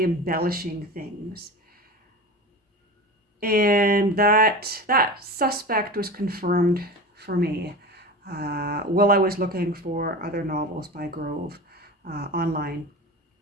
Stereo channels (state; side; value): normal; both; correlation 0.30